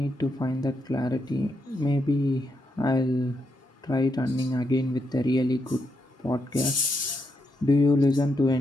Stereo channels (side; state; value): both; normal; correlation 0.81